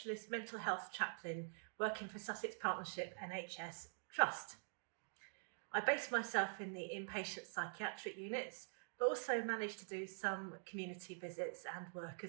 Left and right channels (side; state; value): left; silent; digital silence